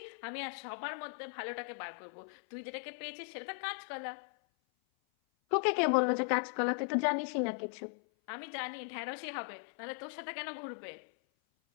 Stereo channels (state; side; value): silent; right; 53 dB below the other